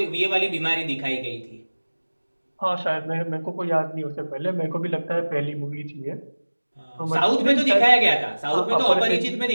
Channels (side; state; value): both; inverted; correlation -1.00